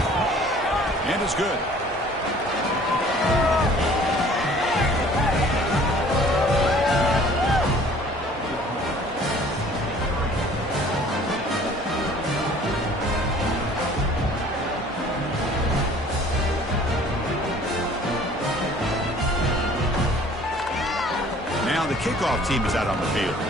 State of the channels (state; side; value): normal; both; correlation 0.52